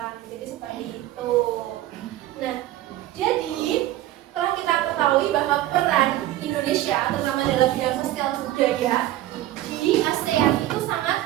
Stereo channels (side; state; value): left; quieter; 14.5 dB